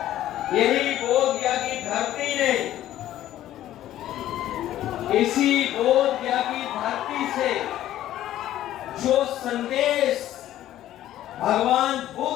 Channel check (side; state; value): right; quieter; 13.1 dB